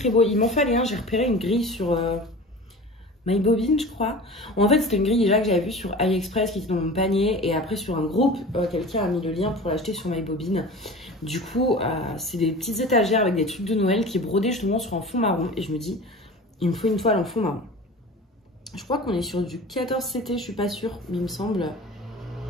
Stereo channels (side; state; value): both; normal; correlation 0.37